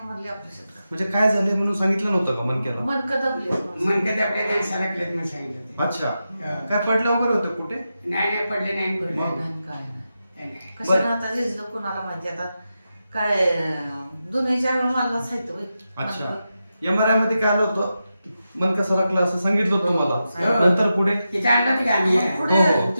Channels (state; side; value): inverted; both; correlation -0.90